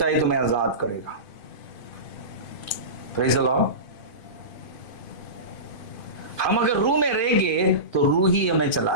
तुम्हें आजाद करेगा। Praise the Lord. हम अगर रूह में रहेंगे तो रूह ही हमें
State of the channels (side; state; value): right; late; 2.5 ms